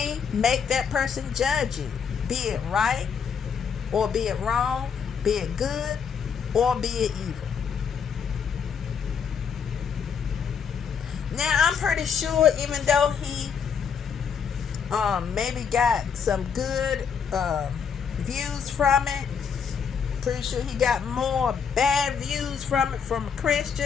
make that person judge you, be it right or be it wrong, be it good or be it evil. Now, I'm pretty sure even though he maybe got some good views from it, pretty sure he got more bad views from it from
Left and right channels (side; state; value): right; quieter; 6.7 dB